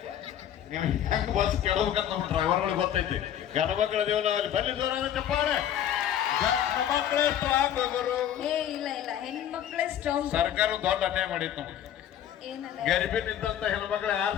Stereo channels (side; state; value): right; quieter; 10.4 dB